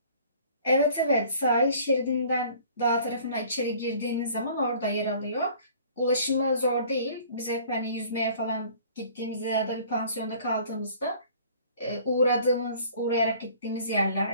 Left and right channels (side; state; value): both; inverted; correlation -0.51